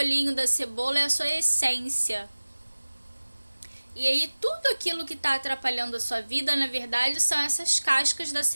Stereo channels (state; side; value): inverted; both; correlation -1.00